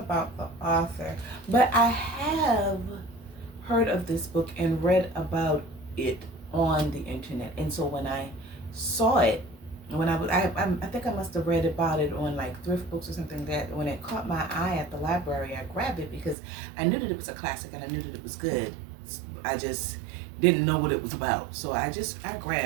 the author, but I have heard of this book and read about it on the internet. And so when I saw it, I think I must have read about it on like thrift books or something, that when it caught my eye at the library, I grabbed it because I knew that it was a classic and I knew that it was good. I just didn't know what it was about. So I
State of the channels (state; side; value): drops out; left; at 16.4 s